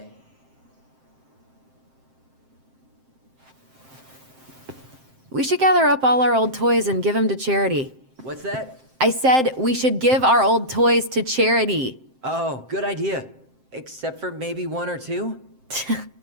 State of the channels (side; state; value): left; late; 7.6 ms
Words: We should gather up all our old toys and give them to charity. What's that? I said we should give our old toys to charity. Oh, good idea. Except for maybe 1 or 2?